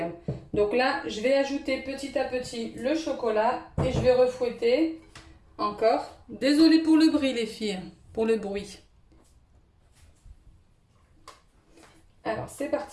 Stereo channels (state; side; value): identical; both; correlation 1.00